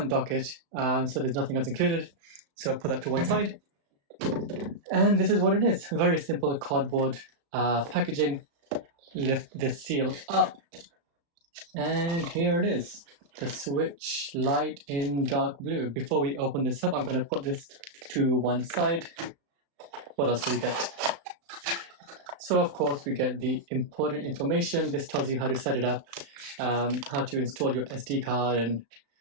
dock it, so there's nothing else included. So put that to one side. And this is what it is. Very simple cardboard packaging. Lift this seal up. And here it is. The Switch Lite in dark blue. Before we open this up, I'm going to put this to one side. What else do we get? So of course we get the important information. This tells you how to set it up, how to install your SD card, and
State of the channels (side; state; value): left; late; 35 ms